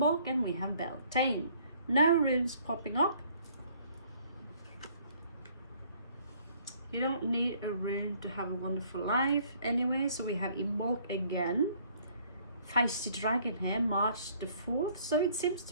and we have Beltane. No runes popping up. You don't need a rune to have a wonderful life anyway. So we have Imbolc again. Feisty Dragon here, March the 4th. So it seems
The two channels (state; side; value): inverted; both; correlation -0.60